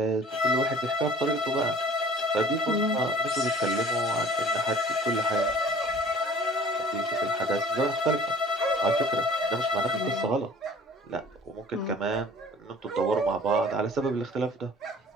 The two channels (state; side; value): normal; both; correlation 0.49